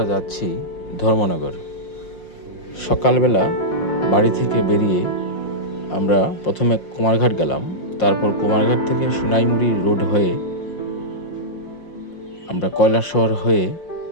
যাচ্ছি ধর্মনগর। সকালবেলা বাড়ি থেকে বেরিয়ে আমরা প্রথমে কুমারঘাট গেলাম, তারপর কুমারঘাট থেকে সোনাইমুড়ি রোড হয়ে আমরা কৈলাসহর হয়ে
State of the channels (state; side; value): late; right; 5.6 ms